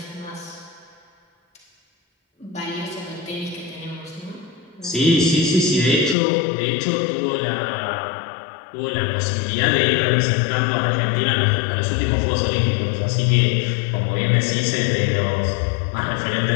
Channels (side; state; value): right; drops out; at 6.2 s